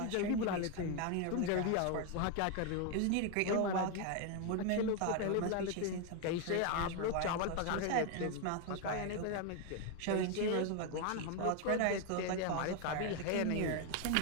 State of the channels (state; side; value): different; both; correlation 0.01